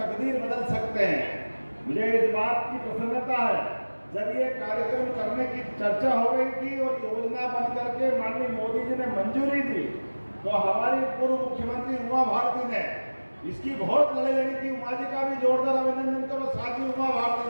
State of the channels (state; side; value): inverted; both; correlation -1.00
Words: बदल सकते हैं। मुझे इस बात की प्रसन्नता है, जब ये कार्यक्रम करने की चर्चा हो गई थी और योजना बन करके माननीय मोदी जी ने मंजूरी दी, तो हमारी पूर्व मुख्यमंत्री उमा भारती ने इसकी बहुत लड़ाई लड़ी थी। उमा जी का भी जोरदार अभिनंदन करो, साथ ही उमा